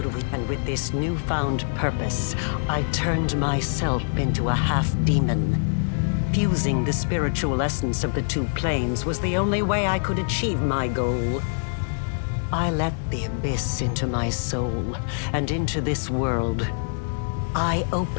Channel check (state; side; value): silent; right; digital silence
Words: we? And with this newfound purpose, I turned myself into a half-demon. Fusing the spiritual essence of the two planes was the only way I could achieve my goal. I let the abyss into my soul, and into this world. I